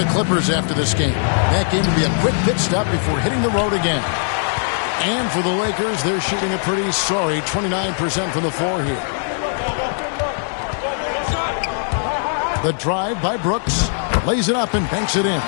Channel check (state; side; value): silent; right; 63 dB below the other